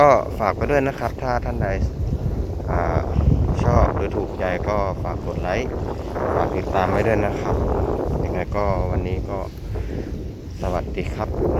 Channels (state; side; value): identical; both; correlation 1.00